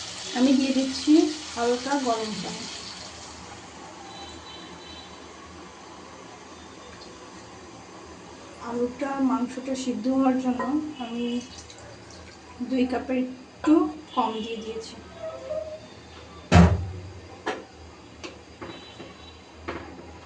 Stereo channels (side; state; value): both; identical; correlation 1.00